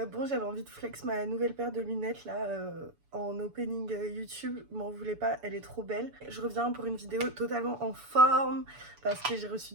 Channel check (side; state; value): left; late; 7.0 ms